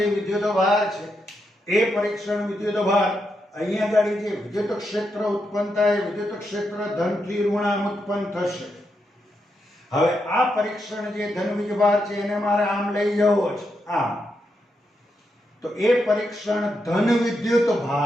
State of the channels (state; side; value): normal; both; correlation 0.83